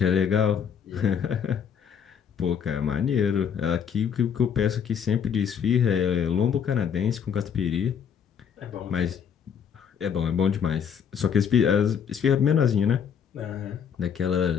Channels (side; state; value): right; quieter; 7.6 dB